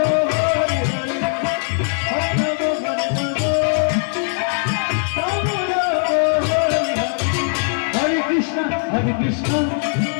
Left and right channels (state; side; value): silent; right; 66 dB below the other